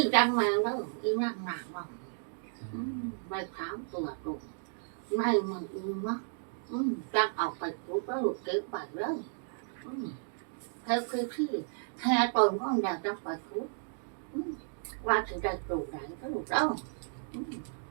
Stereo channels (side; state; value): left; silent; digital silence